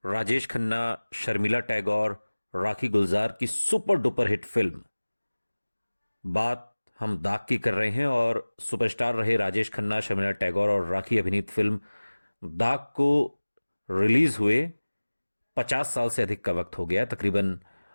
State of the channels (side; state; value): both; inverted; correlation -1.00